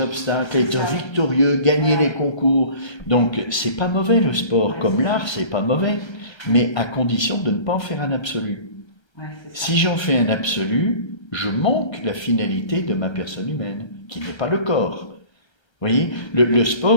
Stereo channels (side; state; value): right; late; 1.3 ms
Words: être victorieux, gagner les concours. Donc, c'est pas mauvais le sport, comme l'art, c'est pas mauvais, mais à condition de ne pas en faire un absolu. Ouais, si j'en fais un absolu, je manque la finalité de ma personne humaine, qui n'est pas le corps. Vous voyez, le